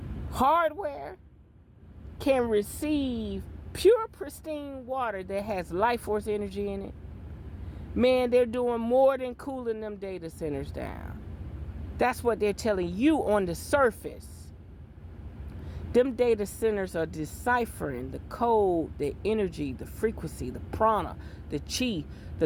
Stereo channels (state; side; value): identical; both; correlation 1.00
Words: hardware can receive pure, pristine water that has life force energy in it? Man, they're doing more than cooling them data centers down. That's what they're telling you on the surface. Them data centers are deciphering the code, the energy, the frequency, the prana, the chi,